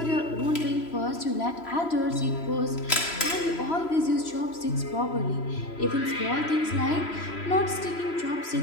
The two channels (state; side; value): late; right; 3.0 ms